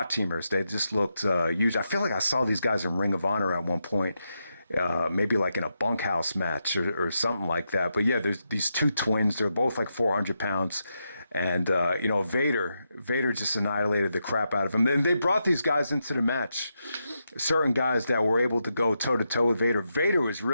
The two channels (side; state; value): both; inverted; correlation -0.85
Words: teamers. They just looked huge. I feel like I saw these guys in Ring of Honor at one point, maybe like in a bunkhouse match or something like that. But yeah, there's these two twins. They're both like 400 pounds. And, Vader just annihilated the crap out of him. Then they brought these guys into the match, certain guys that were able to go toe-to-toe with Vader. Vader was